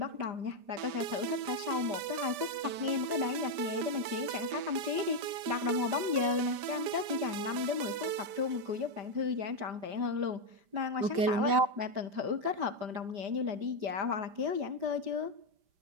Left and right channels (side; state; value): left; late; 5.0 ms